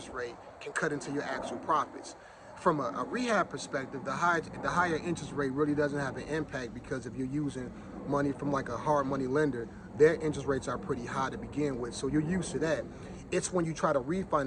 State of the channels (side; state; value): both; identical; correlation 1.00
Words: rate can cut into your actual profits. From a rehab perspective, the higher interest rate really doesn't have an impact, because if you're using money from like a hard money lender, their interest rates are pretty high to begin with, so you're used to that. It's when you try to